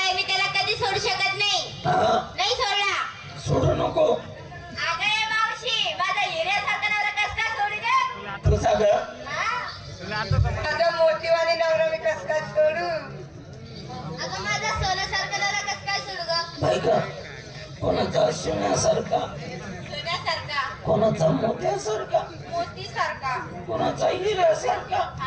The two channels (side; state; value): both; identical; correlation 1.00